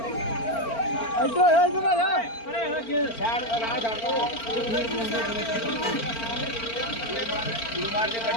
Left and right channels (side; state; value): right; late; 4.4 ms